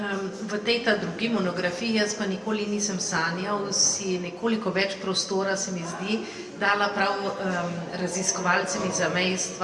V tej ta drugi monografiji, jaz pa nikoli nisem sanjal, si nekoliko več prostora, se mi zdi, dala prav raziskovalcem iz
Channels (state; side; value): identical; both; correlation 1.00